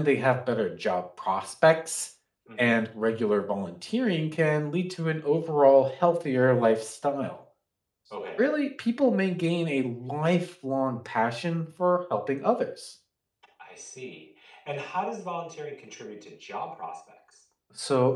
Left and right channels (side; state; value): both; identical; correlation 1.00